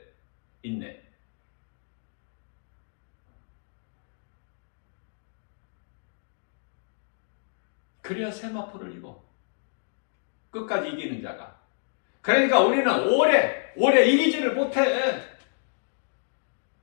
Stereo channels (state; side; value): silent; right; digital silence